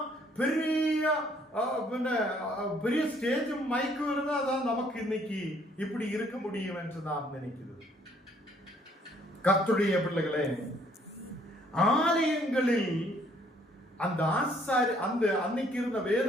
பெரிய பெரிய ஸ்டேஜும் மைக்கும் இருந்தாதான் நமக்கு இன்னைக்கு இப்படி இருக்க முடியும் என்று நான் நினைக்கிறது. கர்த்தருடைய பிள்ளைகளே, ஆலயங்களில் அந்த ஆசாரி அந்த அன்னைக்கு இருந்த வேத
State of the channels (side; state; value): both; normal; correlation 0.64